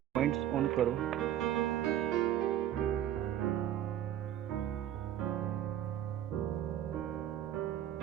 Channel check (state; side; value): quieter; left; 11.5 dB